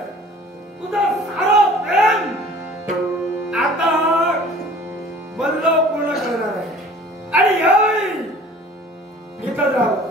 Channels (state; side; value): normal; both; correlation 0.48